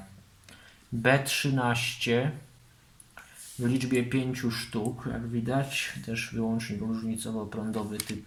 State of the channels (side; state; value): both; identical; correlation 1.00